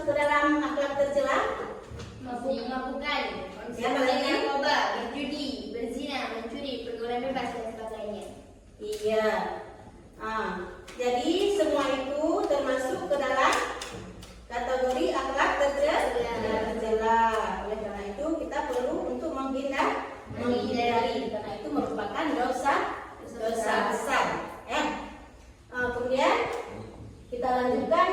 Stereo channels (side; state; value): both; identical; correlation 1.00